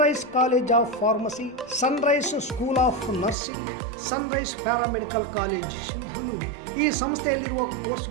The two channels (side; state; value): left; drops out; at 3.4 s